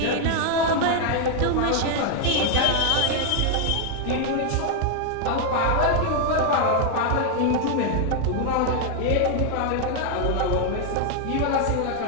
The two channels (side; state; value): both; different; correlation 0.00